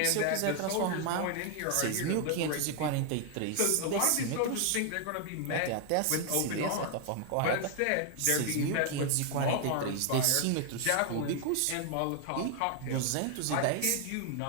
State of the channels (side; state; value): both; different; correlation 0.00